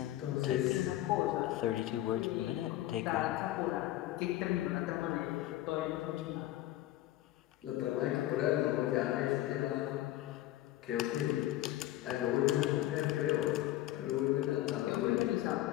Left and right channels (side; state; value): right; quieter; 15.0 dB